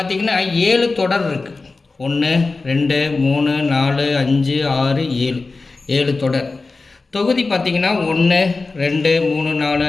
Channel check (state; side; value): quieter; right; 3.8 dB